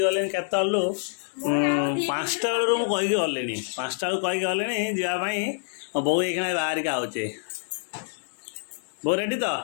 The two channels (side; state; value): right; silent; digital silence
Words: केतलु 5टा बेलू मुझे गलिनी 5टा बेलू कहीकि गलिनी जावाई बो ये बाहर के आउचे बो रेडी तो